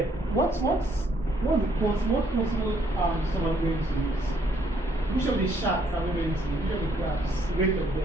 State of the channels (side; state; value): both; normal; correlation 0.68